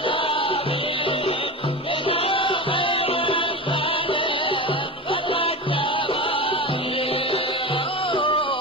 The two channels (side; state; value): both; normal; correlation 0.25